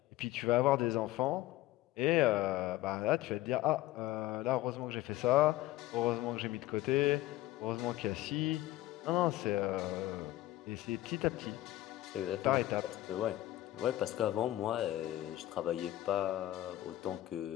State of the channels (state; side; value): quieter; right; 15.8 dB